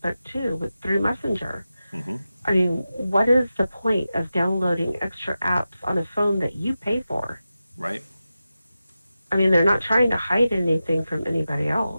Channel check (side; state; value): both; inverted; correlation -0.93